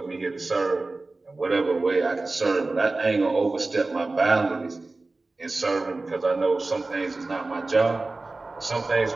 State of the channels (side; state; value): left; quieter; 3.3 dB